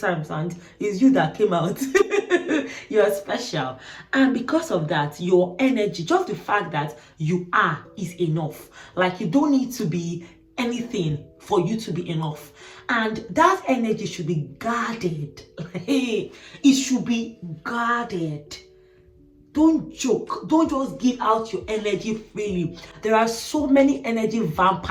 and it's you that came out. You're special. And because of that, your energy, just the fact that you are, is enough. Like, you don't need to be anything for you to be enough. And that energy should be guarded. It should be guarded. Don't joke. Don't just give out your energy freely. There are so many energy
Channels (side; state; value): both; identical; correlation 1.00